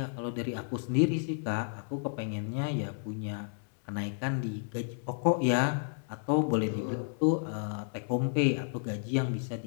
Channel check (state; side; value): silent; right; digital silence